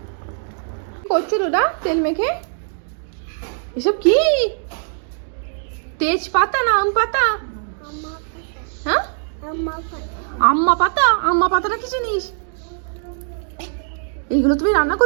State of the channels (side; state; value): left; silent; digital silence